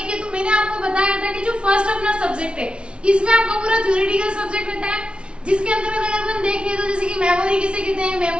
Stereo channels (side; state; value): left; late; 0.058 ms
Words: तो मैंने आपको बताया था कि जो फर्स्ट अपना सब्जेक्ट है इसमें आपका पूरा थ्योरेटिकल सब्जेक्ट रहता है, जिसके अंतर्गत अगर अपन देखें तो जैसे कि मेमोरी किसे कहते हैं,